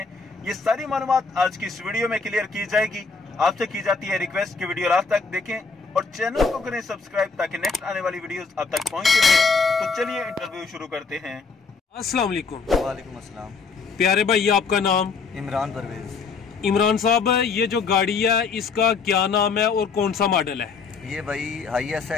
ये सारी मालूमात आज की इस वीडियो में क्लियर की जाएगी। आपसे की जाती है रिक्वेस्ट कि वीडियो लास्ट तक देखें और चैनल को करें सब्सक्राइब ताकि नेक्स्ट आने वाली वीडियोस आप तक पहुंचती रहे। तो चलिए इंटरव्यू शुरू करते हैं। अस्सलाम वालेकुम। वालेकुम अस्सलाम। प्यारे भाई, ये आपका नाम? इमरान परवेज। इमरान साहब, ये जो गाड़ी है इसका क्या नाम है और कौन सा मॉडल है? ये भाई हाईएस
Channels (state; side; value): quieter; right; 4.8 dB